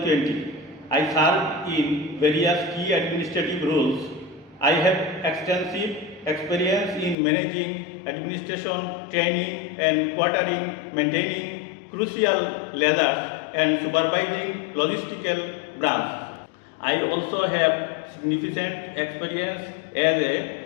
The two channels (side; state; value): right; drops out; at 7.2 s